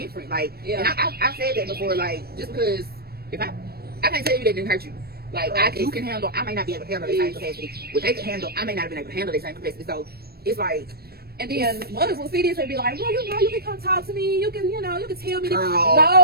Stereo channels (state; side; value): late; left; 0.46 ms